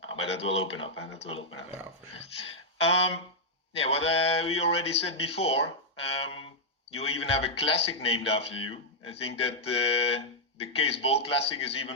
But that will open up, and that will open up. Yeah, for sure. Yeah, what we already said before, you even have a classic named after you. I think that the Cees Bol Classic is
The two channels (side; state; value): both; normal; correlation -0.06